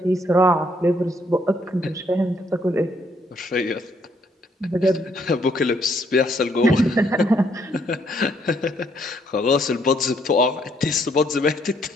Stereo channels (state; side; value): normal; both; correlation 0.69